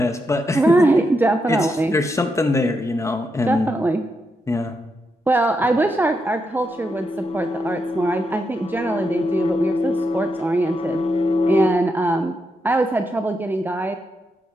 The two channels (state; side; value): normal; both; correlation 0.83